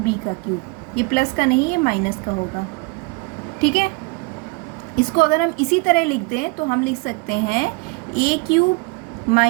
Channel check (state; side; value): quieter; left; 27.8 dB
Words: का क्यूब। ये प्लस का नहीं, ये माइनस का होगा। ठीक है, इसको अगर हम इसी तरह लिख दें तो हम लिख सकते हैं a³